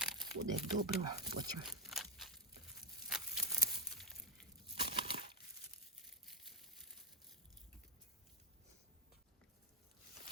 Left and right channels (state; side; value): normal; both; correlation 0.00